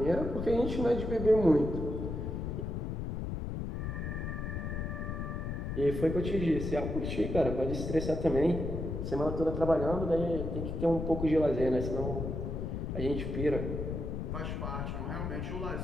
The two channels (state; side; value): noise; left; rumble, 3 dB below the sound